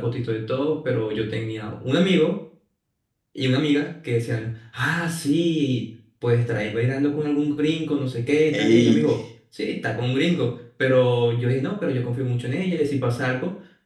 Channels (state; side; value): identical; both; correlation 1.00